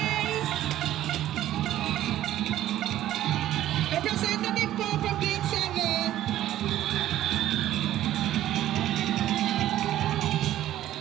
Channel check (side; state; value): left; quieter; 13.2 dB